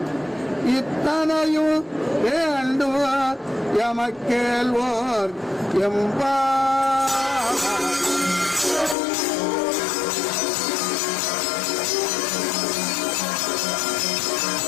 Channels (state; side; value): drops out; right; at 9.0 s